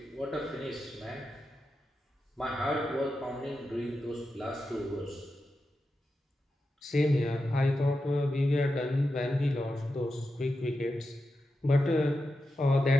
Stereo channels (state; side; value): normal; both; correlation 0.89